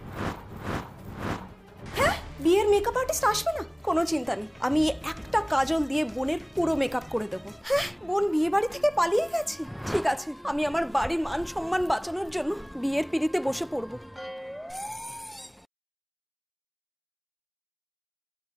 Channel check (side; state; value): both; identical; correlation 1.00